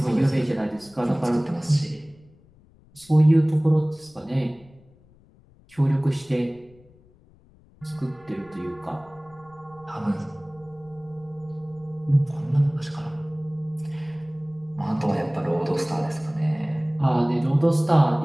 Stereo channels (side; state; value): left; noise; rumble, 28 dB below the sound